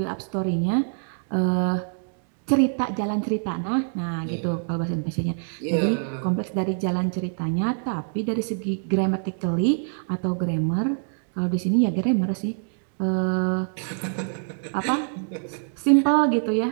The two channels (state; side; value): silent; left; digital silence